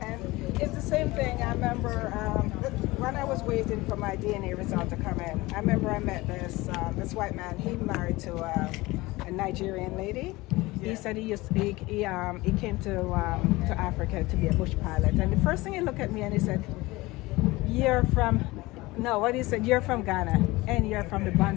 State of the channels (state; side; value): quieter; right; 20.8 dB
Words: it's the same thing. I remember when I was waiting for my DNA result to come in. I remember I met this white man. He married to a Nigerian lady. He said he came to Africa to be a bush pilot, and the first thing he looked at me and he said, "You're from." No, what he said, you're from Ghana and you're from the